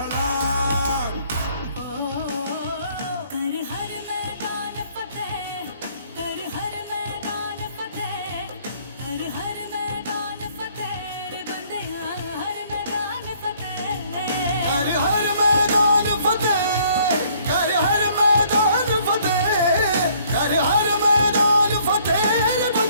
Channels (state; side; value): inverted; both; correlation -0.62